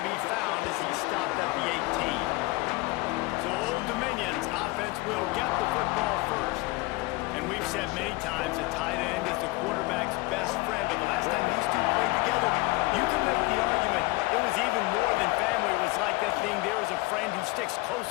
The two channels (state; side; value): quieter; right; 23.1 dB